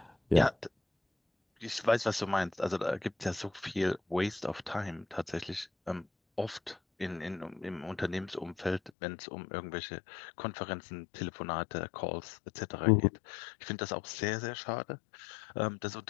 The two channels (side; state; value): right; drops out; at 8.9 s